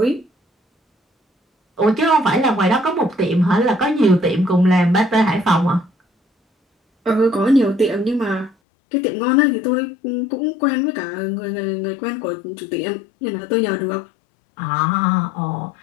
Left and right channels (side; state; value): right; drops out; at 8.6 s